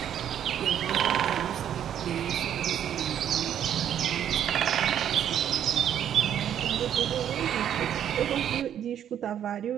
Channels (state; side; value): quieter; left; 9.9 dB